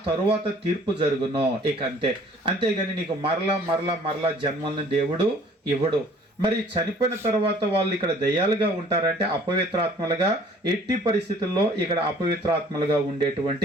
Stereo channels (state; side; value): normal; both; correlation 0.54